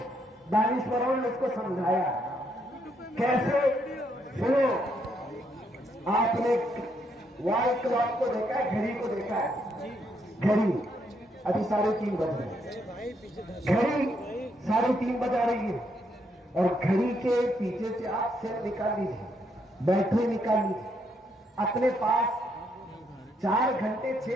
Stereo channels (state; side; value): normal; both; correlation 0.75